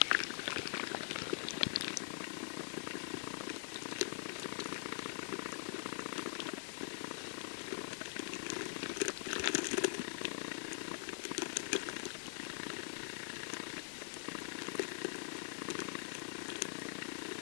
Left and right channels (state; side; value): silent; right; digital silence